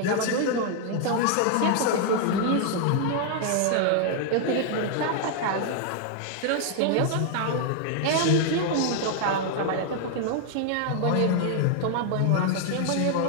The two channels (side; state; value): both; different; correlation 0.00